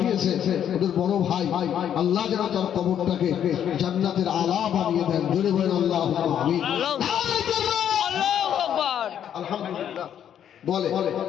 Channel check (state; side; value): quieter; right; 9.6 dB